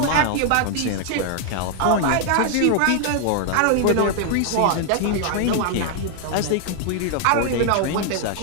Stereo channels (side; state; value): both; different; correlation 0.00